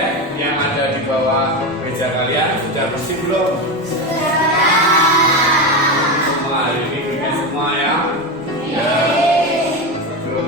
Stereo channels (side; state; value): left; noise; rumble, 27 dB below the sound